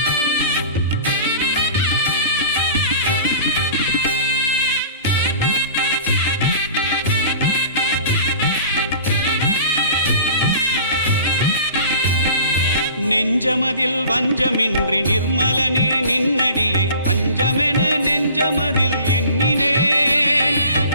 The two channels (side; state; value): both; inverted; correlation -0.43